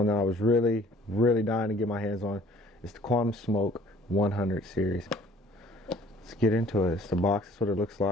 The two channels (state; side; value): normal; both; correlation 0.54